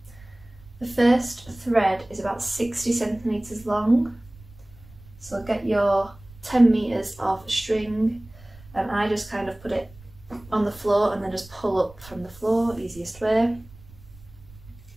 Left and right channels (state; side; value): noise; right; rumble, 22 dB below the sound